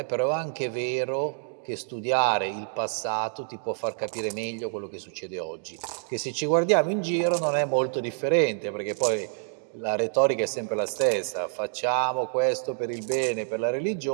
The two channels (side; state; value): left; silent; digital silence